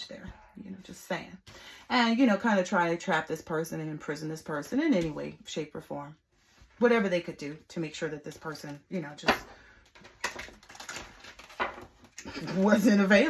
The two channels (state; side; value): identical; both; correlation 1.00